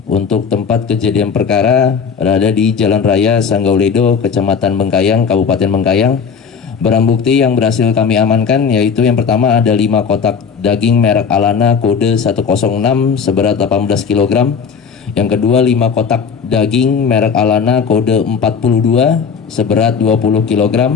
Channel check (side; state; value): right; quieter; 6.2 dB